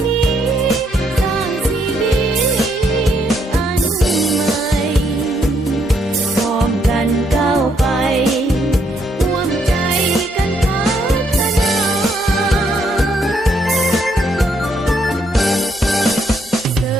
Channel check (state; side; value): normal; both; correlation 0.73